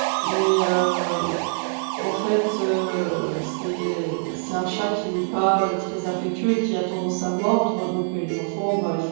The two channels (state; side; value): silent; left; digital silence